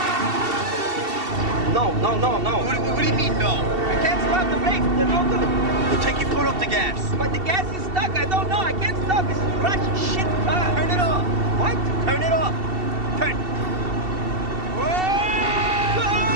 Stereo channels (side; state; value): left; late; 2.7 ms